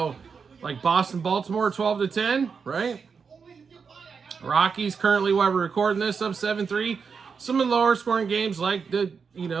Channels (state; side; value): quieter; left; 5.7 dB